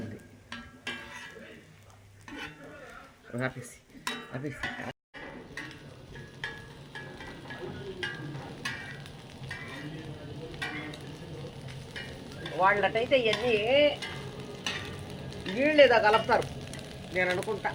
ఉంది. ఆపేసి ఆపేసి. వాళ్ళటైతే ఇవన్నీ నీళ్ళు ఏదో కలుపుతారు నేను అనుకుంటా,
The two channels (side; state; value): both; identical; correlation 1.00